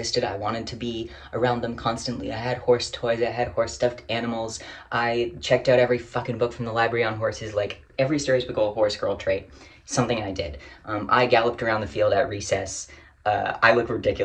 I wanted to be around them constantly. I had horse toys, I had horse stuffed animals. I checked out every fucking book from the library on horses, like every stereotypical horse girl trait, something I did. I galloped around the field at recess. I look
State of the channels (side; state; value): both; identical; correlation 1.00